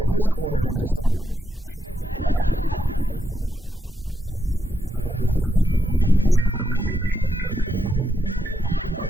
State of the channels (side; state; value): both; normal; correlation 0.83